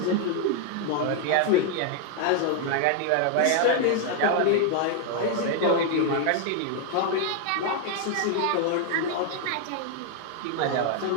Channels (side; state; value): both; different; correlation 0.00